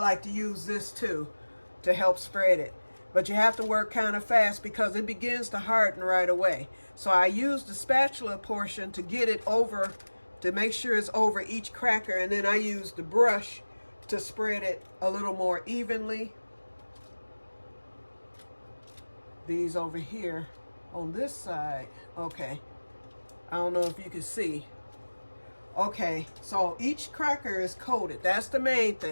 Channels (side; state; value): both; inverted; correlation -1.00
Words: to use this too to help spread it. But you have to work kind of fast because it begins to harden right away. So I use the spatula portion to get it over, to make sure it's over each cracker. And then I use the brush to spread it a little more evenly. These over here on this side. Okay. I don't know if you can see. Okay, so each cracker is coated. That's the main